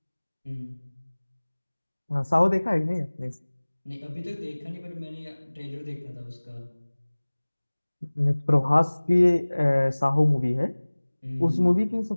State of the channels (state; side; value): inverted; both; correlation -1.00